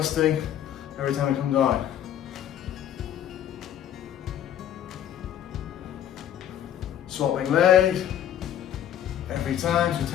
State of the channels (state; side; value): quieter; right; 10.5 dB